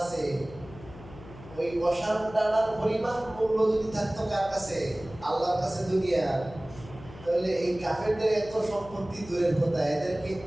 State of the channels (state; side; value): noise; left; hum, 17 dB below the sound